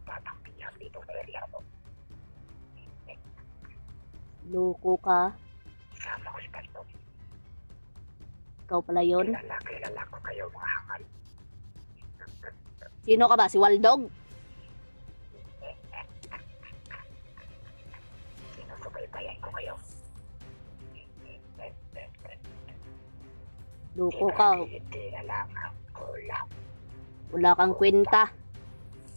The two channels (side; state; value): both; inverted; correlation -1.00